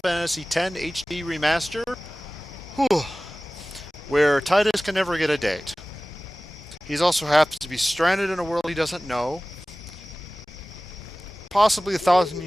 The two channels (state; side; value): normal; both; correlation 0.97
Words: X HD Remaster, Whew. Where Titus can never get a date. He also happens to be stranded in a world he doesn't know, possibly 1,000